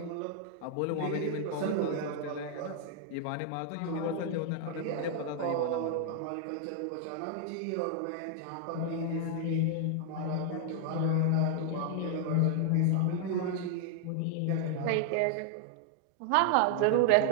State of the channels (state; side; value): different; both; correlation 0.00